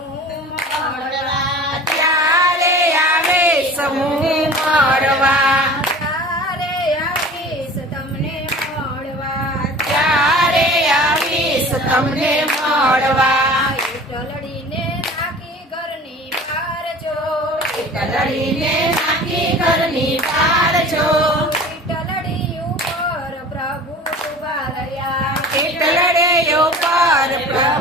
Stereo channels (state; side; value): normal; both; correlation 0.41